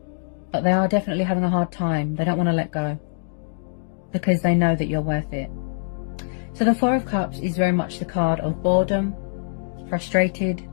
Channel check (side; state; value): right; silent; digital silence